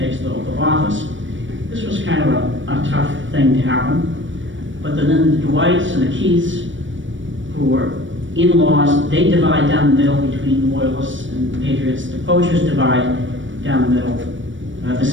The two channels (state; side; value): late; left; 0.56 ms